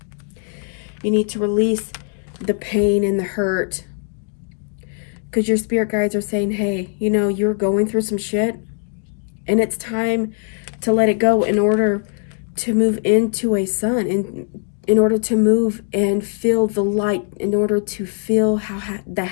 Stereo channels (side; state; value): right; silent; 57 dB below the other